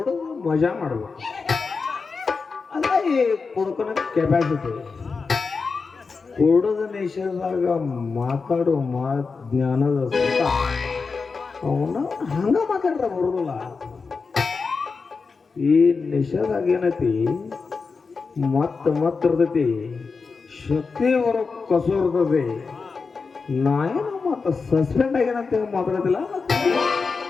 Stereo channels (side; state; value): right; quieter; 4.7 dB